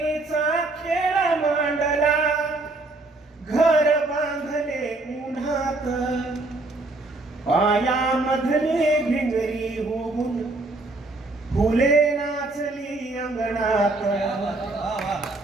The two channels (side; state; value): left; quieter; 3.0 dB